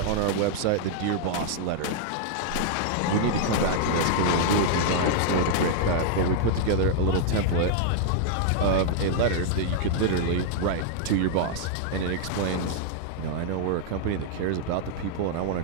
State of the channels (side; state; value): both; different; correlation 0.00